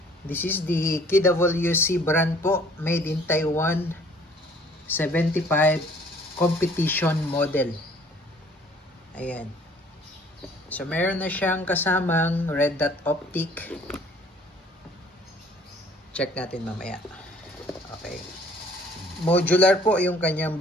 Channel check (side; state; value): both; normal; correlation 0.56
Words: This is the KWC brand po, made in Taiwan, 75 competition model. Ayan. So, meron na siyang kasamang red dot optic. Check natin mamaya. Okay. Modular po yung kanyang